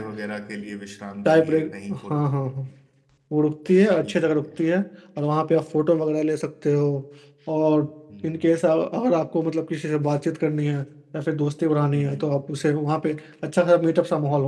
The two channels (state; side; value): identical; both; correlation 1.00